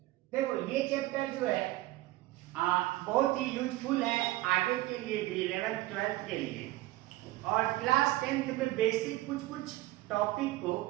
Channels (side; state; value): left; quieter; 17.7 dB